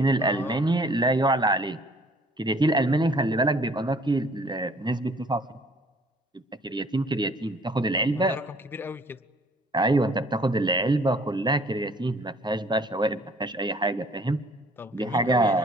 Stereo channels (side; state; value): both; normal; correlation 0.56